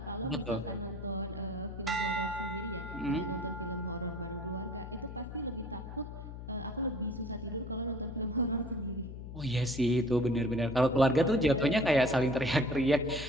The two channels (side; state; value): left; noise; hum, 10 dB below the sound